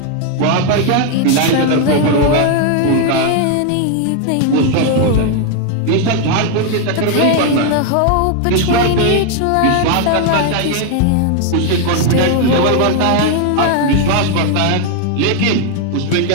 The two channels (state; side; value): different; both; correlation 0.01